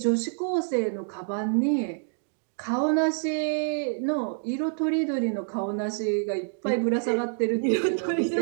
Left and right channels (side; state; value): left; silent; digital silence